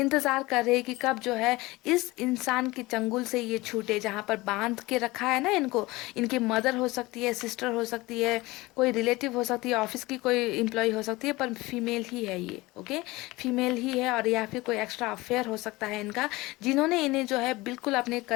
कर रहे कि कब जो है इस इंसान के चंगुल से ये छूटे, जहाँ पर बांध के रखा है ना इनको। इनकी मदर हो सकती है, सिस्टर हो सकती है, कोई रिलेटिव हो सकती है, ऑफिस की कोई एम्प्लॉय हो सकती है, पर फीमेल ही है ये, ओके, फीमेल ही है। और या फिर कोई एक्स्ट्रा अफेयर हो सकता है इनका, जिन्होंने इन्हें जो है बिल्कुल अपने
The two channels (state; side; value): quieter; right; 20.9 dB